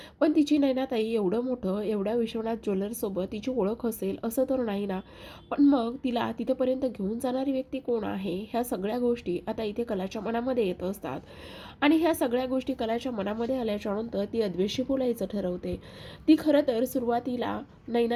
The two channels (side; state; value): both; identical; correlation 1.00